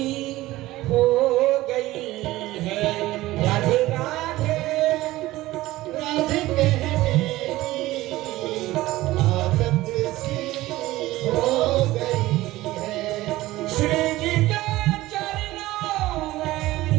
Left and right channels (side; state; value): left; quieter; 17.3 dB